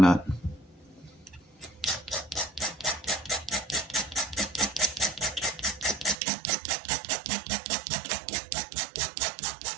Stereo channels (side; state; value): left; drops out; at 6.2 s